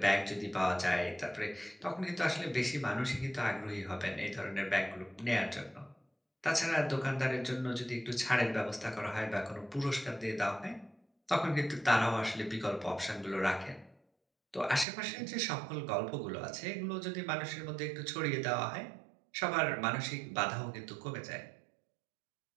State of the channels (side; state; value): left; drops out; at 14.9 s